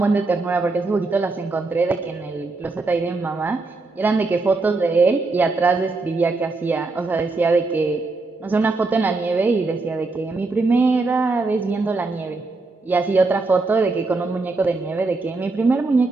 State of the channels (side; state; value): left; quieter; 3.6 dB